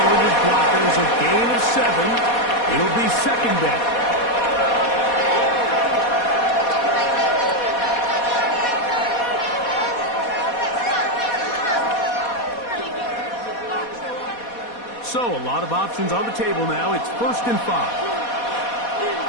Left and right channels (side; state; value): right; late; 4.2 ms